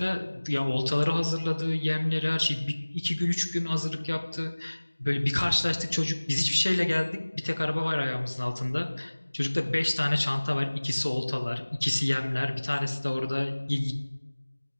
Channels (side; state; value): both; inverted; correlation -1.00